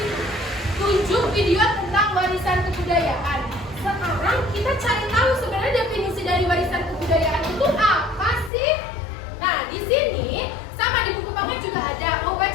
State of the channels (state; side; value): drops out; right; at 8.5 s